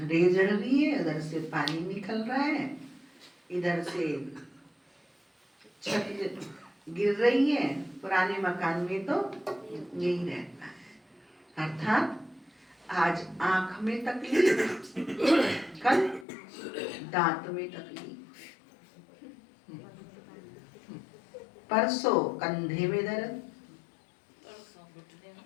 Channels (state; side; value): drops out; right; at 16.2 s